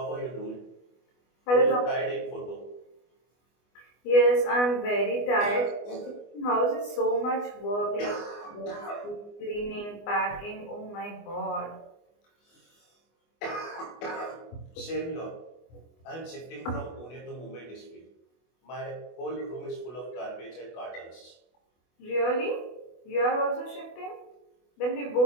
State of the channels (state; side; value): late; right; 24 ms